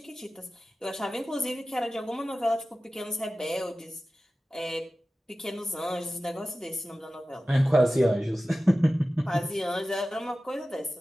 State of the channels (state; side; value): normal; both; correlation 0.95